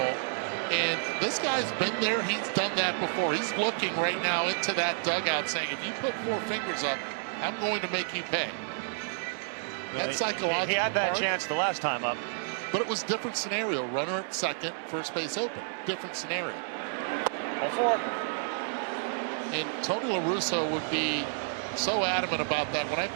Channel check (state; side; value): silent; left; 58 dB below the other